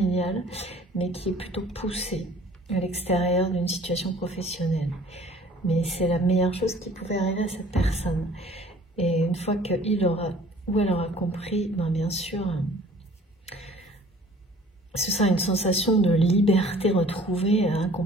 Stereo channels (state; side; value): normal; both; correlation 0.51